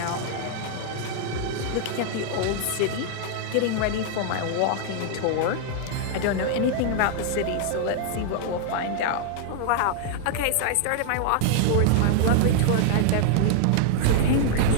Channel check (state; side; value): different; both; correlation -0.01